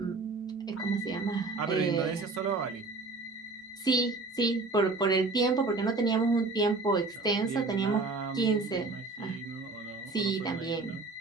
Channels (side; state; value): left; quieter; 3.5 dB